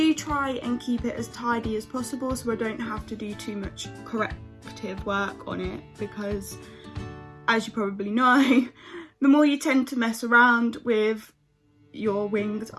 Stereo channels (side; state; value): both; identical; correlation 1.00